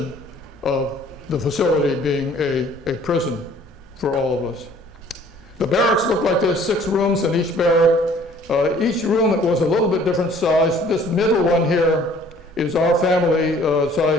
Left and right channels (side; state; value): both; normal; correlation 0.55